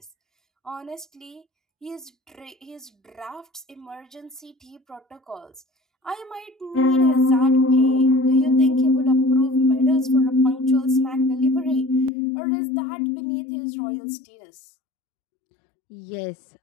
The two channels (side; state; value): right; drops out; at 12.1 s